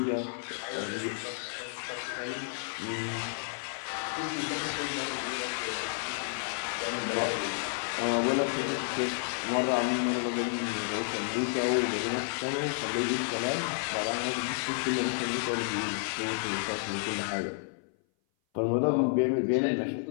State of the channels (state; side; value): silent; right; 56 dB below the other